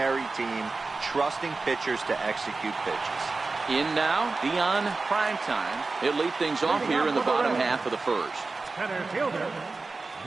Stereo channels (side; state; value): left; quieter; 3.8 dB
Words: team, trusting pitchers to execute pitches. In now, Deion primetime. He'll lead things off here in the bottom half of the first. Center fielder,